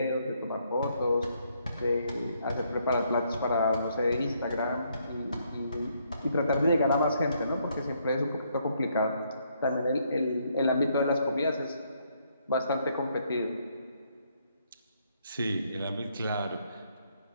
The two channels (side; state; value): both; inverted; correlation -0.72